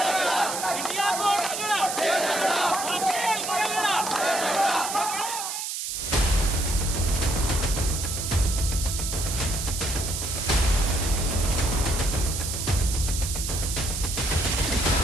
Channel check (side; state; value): right; noise; hiss, 4 dB below the sound